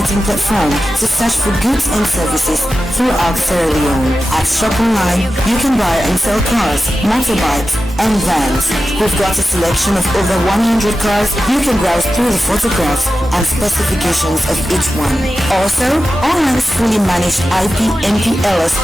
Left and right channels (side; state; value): both; normal; correlation 0.93